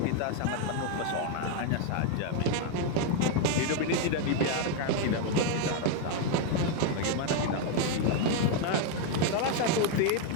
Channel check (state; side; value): different; both; correlation 0.01